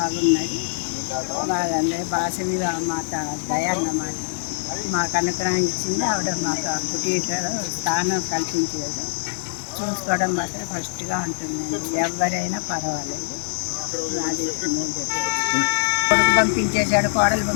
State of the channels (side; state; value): right; silent; 63 dB below the other